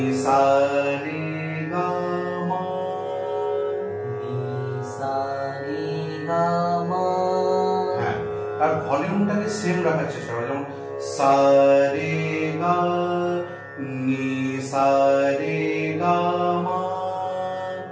সা রে গা মা, নি সা রে গা মা। হ্যাঁ, আর ভলিউমটাকে সেম রাখার চেষ্টা করো, যেমন সা রে গা, নি সা রে গা মা,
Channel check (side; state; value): both; identical; correlation 1.00